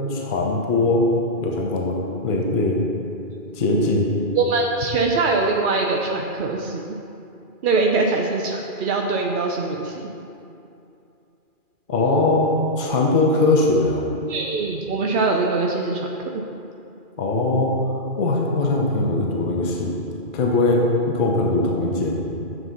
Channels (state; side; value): late; left; 2.4 ms